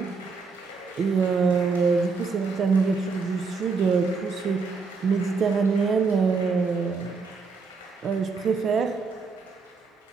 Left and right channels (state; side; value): quieter; left; 4.6 dB